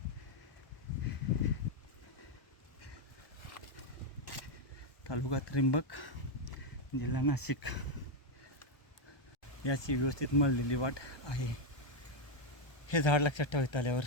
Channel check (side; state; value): right; late; 1.2 ms